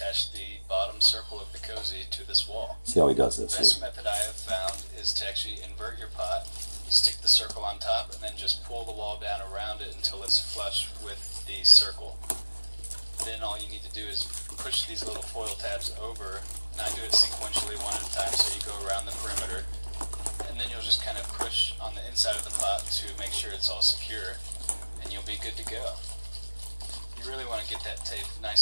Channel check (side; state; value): both; inverted; correlation -1.00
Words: the bottom circle of the cozy to this wall. See how he does this. The best method I have found is to actually invert your pot, stick the circle on top, and then just pull the wall down around it until it's flush with the circle. Then all you need to do is push these little foil tabs over, and I do it sequentially one at a time, so you go around the perimeter, and then you'll just kind of push on the inside of the pot to make sure it's all secure, and you'll be good to go. You really want to get that tape